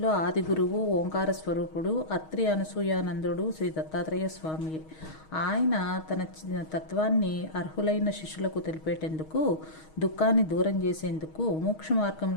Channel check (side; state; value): right; late; 6.4 ms